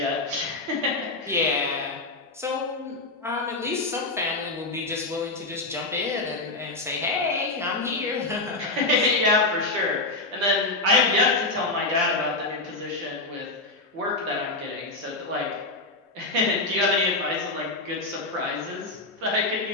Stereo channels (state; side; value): quieter; right; 3.1 dB